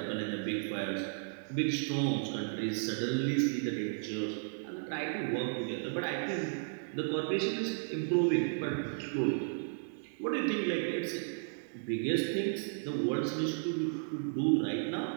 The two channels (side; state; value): left; silent; digital silence